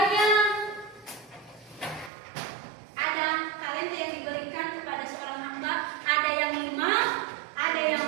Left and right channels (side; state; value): left; drops out; at 2.1 s